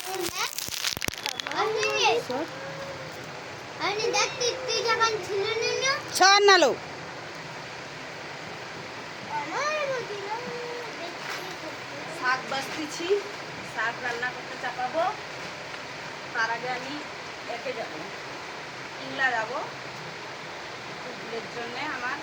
সর নালো। শাক বাছতেছি, শাক রান্না করতে চাপাবো। তার আগে আমি একে যাবো, ইংলা যাবো। ভুলের জন্যে আমার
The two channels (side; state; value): both; identical; correlation 1.00